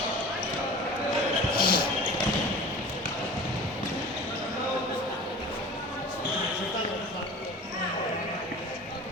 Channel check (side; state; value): both; normal; correlation 0.39